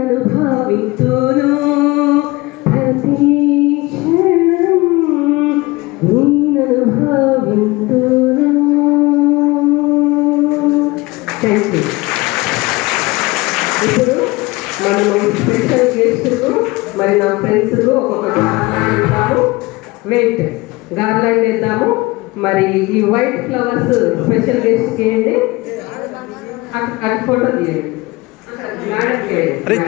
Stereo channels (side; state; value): right; quieter; 22.1 dB